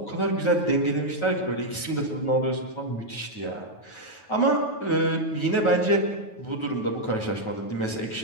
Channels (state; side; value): late; right; 9.3 ms